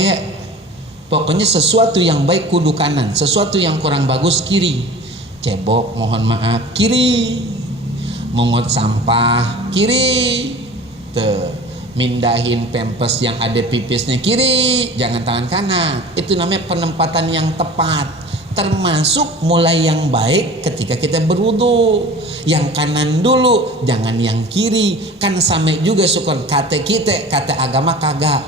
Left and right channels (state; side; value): normal; both; correlation 0.40